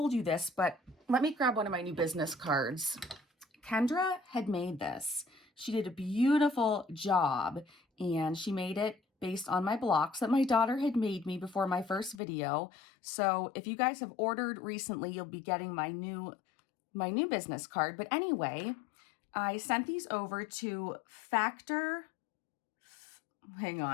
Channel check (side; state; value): right; drops out; at 12.2 s